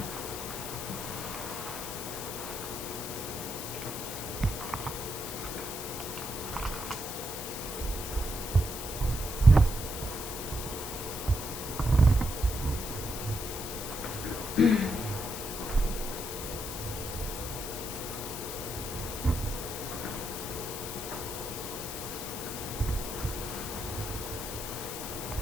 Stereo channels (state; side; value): noise; left; hiss, 7 dB below the sound